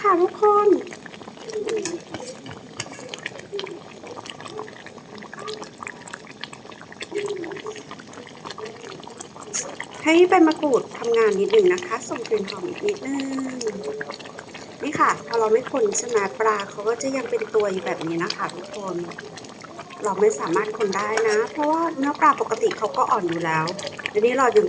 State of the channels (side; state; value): both; identical; correlation 1.00